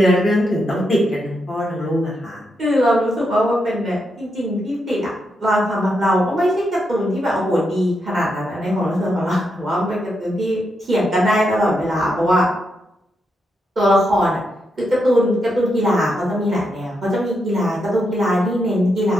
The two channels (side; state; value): both; normal; correlation 0.83